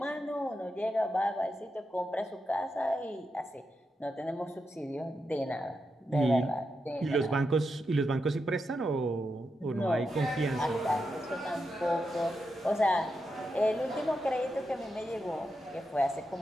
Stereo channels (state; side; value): normal; both; correlation 0.86